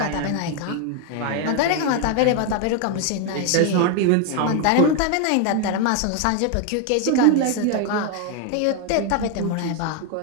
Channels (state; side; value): different; both; correlation 0.01